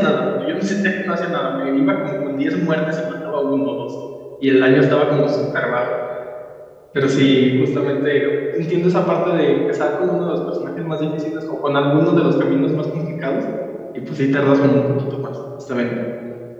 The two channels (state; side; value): identical; both; correlation 1.00